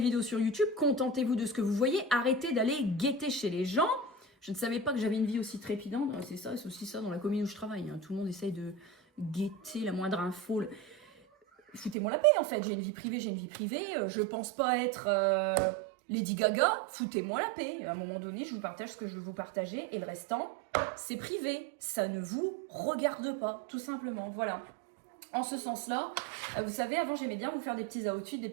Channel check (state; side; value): drops out; left; at 12.0 s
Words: sur YouTube, contentez-vous de ce que vous voyez, arrêtez d'aller guetter chez les gens. Je ne savais pas que j'avais une vie aussi trépidante. C'est ça, c'est aussi ça dans la commune où je travaille. Hein. Tout le monde essaye de guetter la moindre info. Foutez-moi la paix en fait, j'ai une vie privée, je pense pas être Lady Gaga, foutez-moi la paix. À un moment donné, je vous partage ce que je veux vous partager et le restant, c'est privé, ça ne vous regarde pas, tout simplement, voilà. En ce sens-là, vous savez, avant j'aimais bien vous faire des petits outfits, des